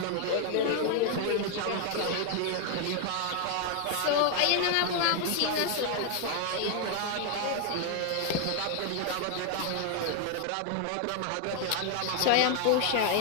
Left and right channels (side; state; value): both; different; correlation 0.00